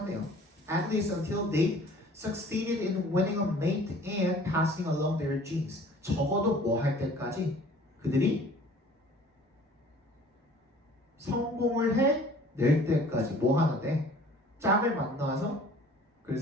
At least until they succeeded in winning a mate and passing along their genes. 적어도 뭐 할 때까지 그들이 성공을 해낼 때까지 뭐 하는데 짝을 만나서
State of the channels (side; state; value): both; normal; correlation 0.50